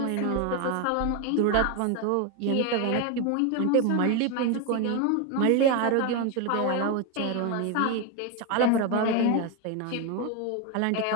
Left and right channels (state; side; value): different; both; correlation 0.02